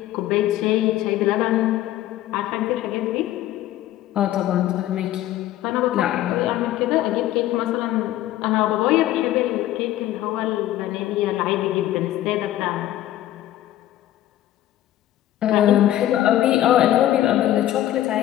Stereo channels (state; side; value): quieter; right; 13.6 dB